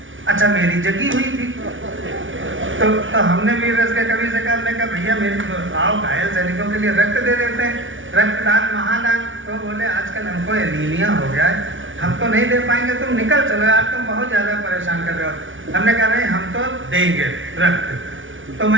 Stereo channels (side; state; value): left; late; 0.57 ms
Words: अच्छा, मेरी जगी हुई थी, तो हमने भी रस के कवि से कहा, हमने कहा भैया मेरे आओ घायल सैनिकों के लिए रक्त दे देते हैं, रक्तदान महादान। तो बोले आजकल हमको एनीमिया हो गया है, हम तो नहीं दे पाएंगे, तुम निकल चलो यार, तुम बहुत ज़्यादा परेशान कर रहे हो। हमने कहा नहीं, हम तो देंगे रक्त। तो